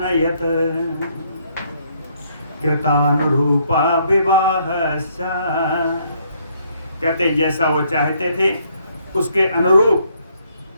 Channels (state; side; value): inverted; both; correlation -0.69